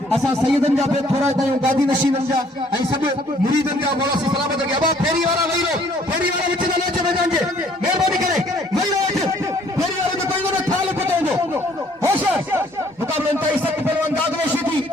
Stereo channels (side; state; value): both; normal; correlation 0.61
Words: असा सैयदन जा पे थोड़ा तायूं गादी नशीनन जा ऐं सब मुरीदन जा मौला से सलामत के अबा फेरी वाला वही रो फेरी वाला विच न अचे मैदान जे मेहरबानी करे वही रो फेरी वाला तो कोई न थाल पटोंदो होशियार मुकाबले में सब पहलवान दादलो शीदी